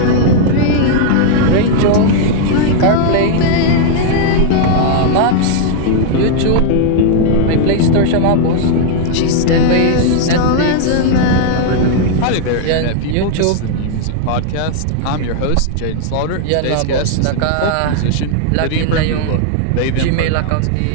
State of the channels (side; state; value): both; different; correlation -0.01